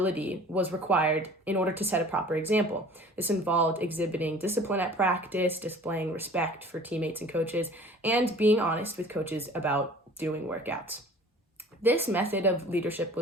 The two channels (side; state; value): both; normal; correlation 0.46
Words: was required in order to set a proper example. This involved exhibiting discipline at practice, displaying respect for teammates and coaches, and being honest with coaches about doing workouts. This method of leadership